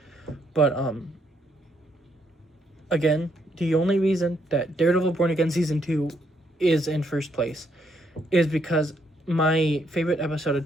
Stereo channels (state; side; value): normal; both; correlation 0.74